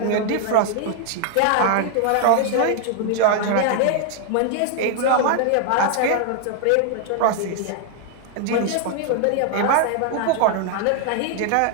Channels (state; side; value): different; both; correlation 0.00